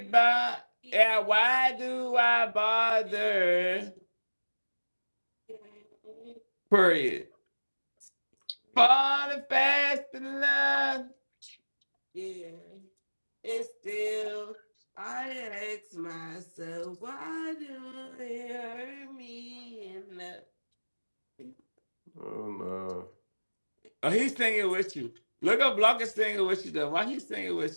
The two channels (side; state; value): both; inverted; correlation -1.00